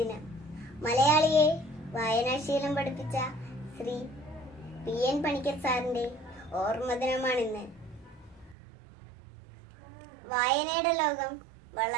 മലയാളിയെ വായനാശീലം പഠിപ്പിച്ച ശ്രീ PN പണിക്കർ സാറിൻ്റെ ഓർമ്മ ദിനമാണിന്ന്. വായനയുടെ ലോകം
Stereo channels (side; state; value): left; drops out; at 8.6 s